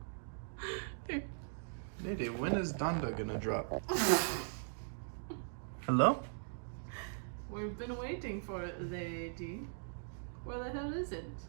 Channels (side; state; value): left; silent; digital silence